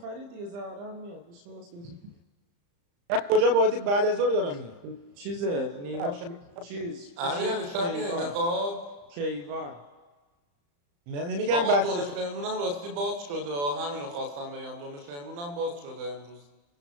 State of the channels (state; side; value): late; left; 35 ms